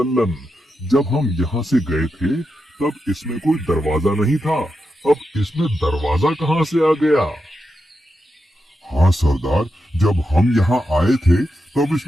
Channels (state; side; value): normal; both; correlation 0.87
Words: जब हम यहाँ से गए थे तब इसमें कोई दरवाजा नहीं था। अब इसमें दरवाजा कहाँ से आ गया? हाँ सरदार, जब हम यहाँ आए थे तब